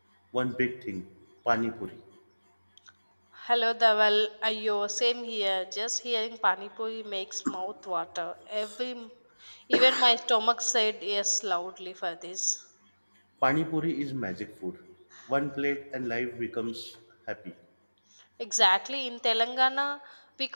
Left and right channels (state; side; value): inverted; both; correlation -1.00